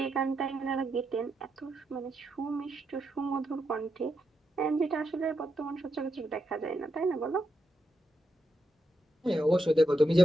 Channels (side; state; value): both; normal; correlation 0.83